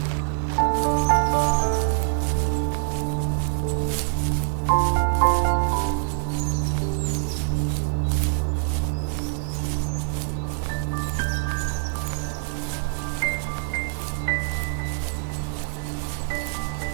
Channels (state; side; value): silent; left; digital silence